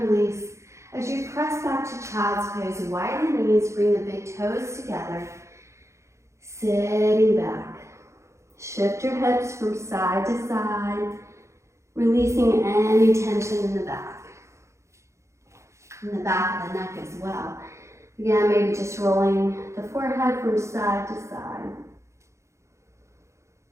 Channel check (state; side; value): late; left; 0.14 ms